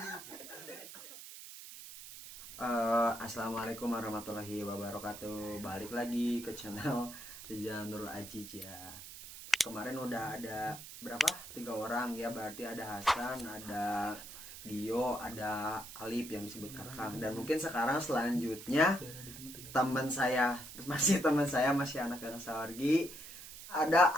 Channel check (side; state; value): right; noise; hiss, 13 dB below the sound